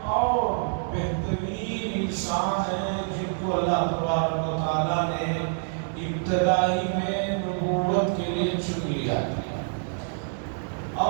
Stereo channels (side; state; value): left; silent; 60 dB below the other